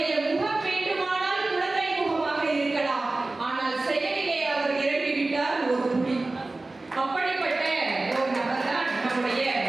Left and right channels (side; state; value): left; quieter; 3.1 dB